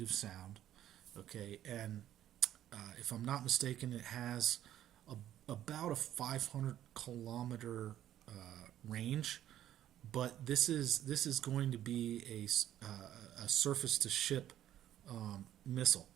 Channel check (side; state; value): left; quieter; 11.9 dB